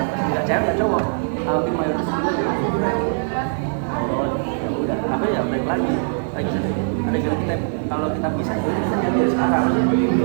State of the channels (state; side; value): silent; left; digital silence